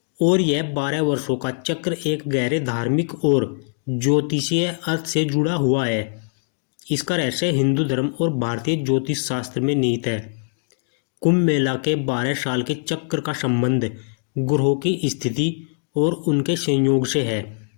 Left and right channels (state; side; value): silent; right; digital silence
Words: और यह 12 वर्षों का चक्र एक गहरे धार्मिक और ज्योतिषीय अर्थ से जुड़ा हुआ है। इसका रहस्य हिंदू धर्म और भारतीय ज्योतिष शास्त्र में निहित है। कुंभ मेला के 12 साल के चक्र का संबंध ग्रहों की स्थिति और उनके संयोग से है।